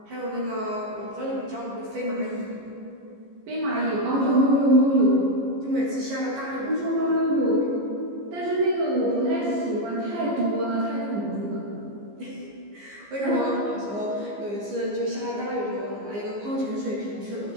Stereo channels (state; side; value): late; left; 15 ms